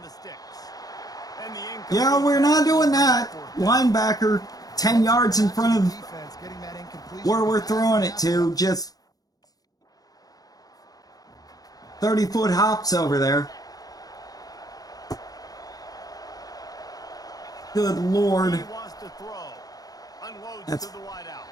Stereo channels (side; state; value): right; late; 0.18 ms